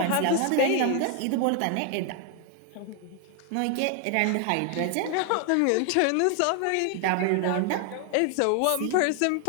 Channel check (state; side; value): different; both; correlation 0.00